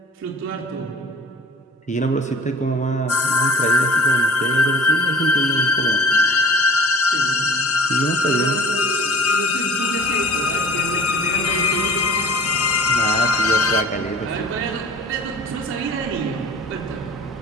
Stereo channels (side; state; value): both; normal; correlation 0.45